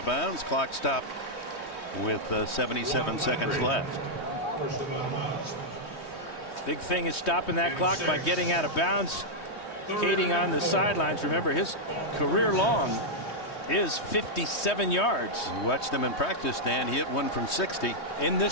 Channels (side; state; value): right; late; 3.2 ms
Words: bounds. Clock stopped with 77 seconds left. Big thing is stopping that clock by getting out of bounds. Kading on the sidelines. Remember, his career long is 57 yards. We watched him in practice, Dan. He hit one from 60. In